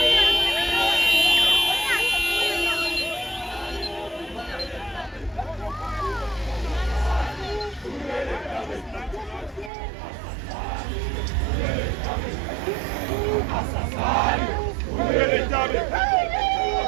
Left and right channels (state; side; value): drops out; left; at 9.7 s